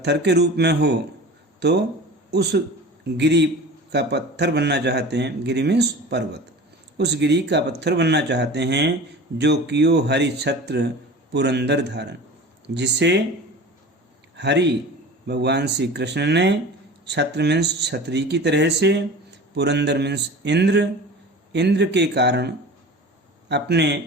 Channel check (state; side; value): normal; both; correlation 0.37